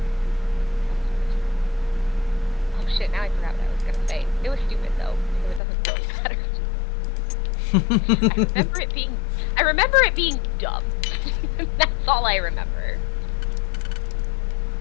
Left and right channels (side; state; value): right; drops out; at 5.6 s